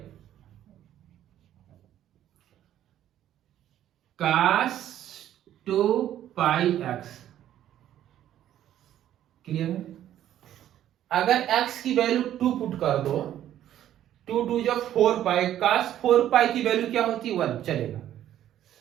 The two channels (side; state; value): left; quieter; 11.7 dB